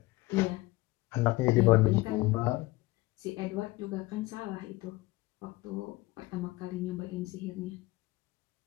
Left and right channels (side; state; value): right; quieter; 20.1 dB